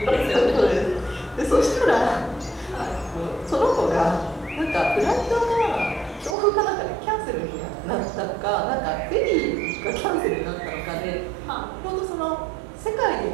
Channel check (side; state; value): left; drops out; at 6.4 s